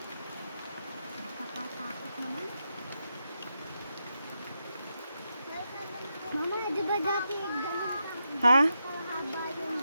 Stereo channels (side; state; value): both; inverted; correlation -0.85